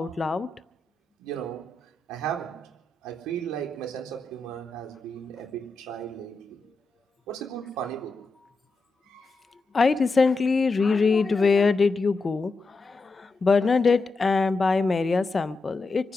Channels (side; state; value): right; quieter; 3.4 dB